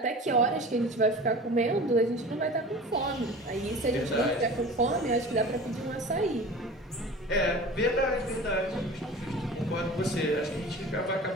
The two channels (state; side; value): normal; both; correlation 0.38